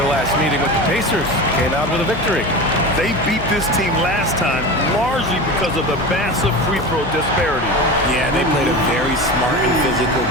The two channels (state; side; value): noise; left; hum, 9 dB below the sound